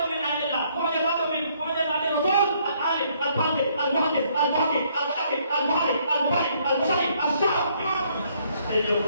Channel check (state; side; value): inverted; both; correlation -0.67